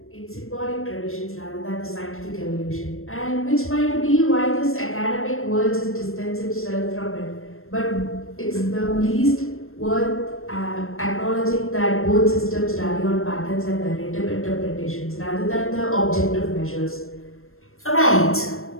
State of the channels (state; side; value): late; right; 0.62 ms